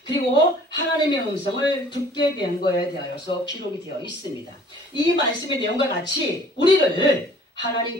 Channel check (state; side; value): normal; both; correlation 0.52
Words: 그리고 하나님의 음성을 듣게 된 것에 대하여서 기록이 되어 있습니다. 이 말씀의 내용과 같이 우리를